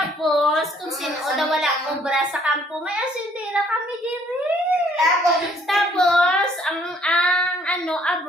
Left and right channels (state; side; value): normal; both; correlation 0.62